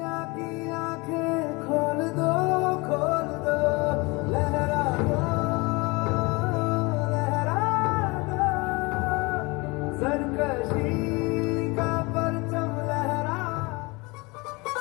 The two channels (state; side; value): quieter; right; 25.9 dB